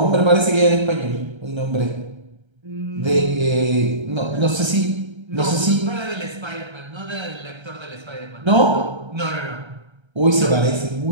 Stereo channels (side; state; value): left; late; 1.3 ms